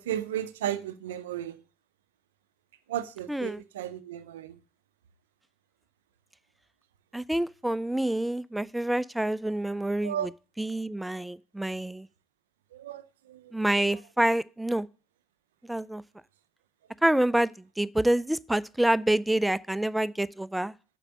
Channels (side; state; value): both; normal; correlation 0.90